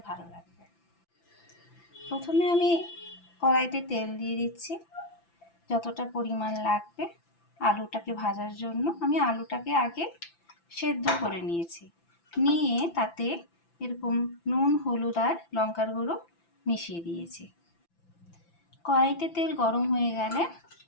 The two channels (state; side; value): late; right; 5.9 ms